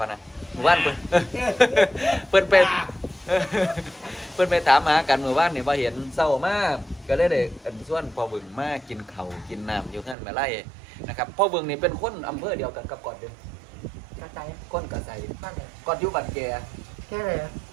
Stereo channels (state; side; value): drops out; left; at 10.2 s